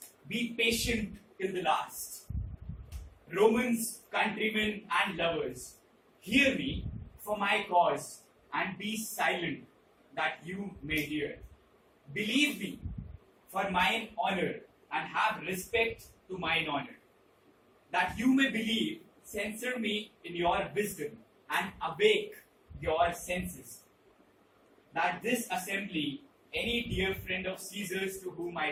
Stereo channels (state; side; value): identical; both; correlation 1.00